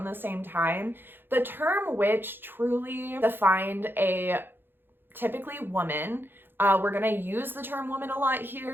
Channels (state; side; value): late; left; 0.10 ms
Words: the same time. The term witch truly defined a typically woman. We're going to use the term woman a lot